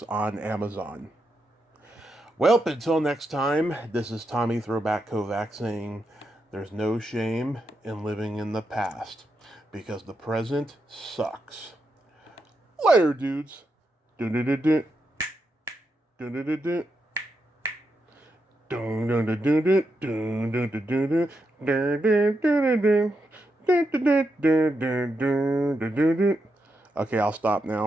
on Amazon. Well, until next time, this is Tommy Throwback Kovac saying there's no shame in living in the past, because the present sucks. Later, dudes. Dun-dun-dun-dun. Dun-dun-dun-dun. Dun-dun-dun-dun-dun. Dun-dun-dun-dun-dun. Dun-dun-dun-dun-dun. Okay, I'll stop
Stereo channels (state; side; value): normal; both; correlation 0.84